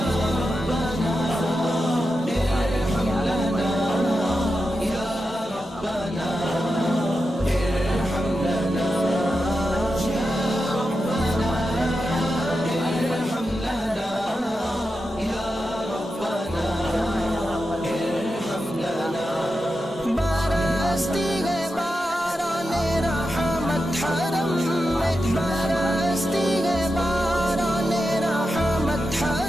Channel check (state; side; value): normal; both; correlation 0.89